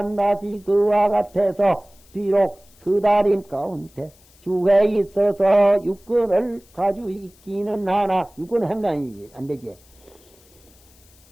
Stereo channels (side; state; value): left; noise; hiss, 29 dB below the sound